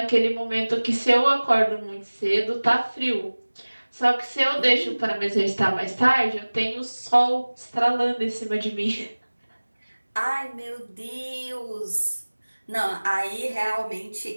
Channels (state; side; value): inverted; both; correlation -1.00